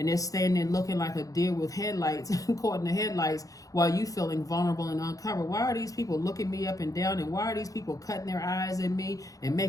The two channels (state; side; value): late; right; 0.17 ms